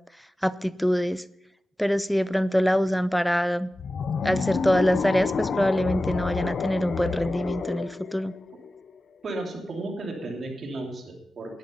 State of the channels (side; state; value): both; normal; correlation 0.95